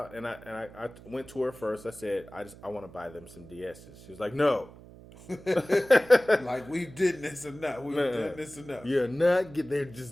and I went to her first. I said, I want to buy them some DSs. She was like, no. Like, we did this enough. We've done this enough. You're not. They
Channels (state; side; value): noise; right; hum, 19 dB below the sound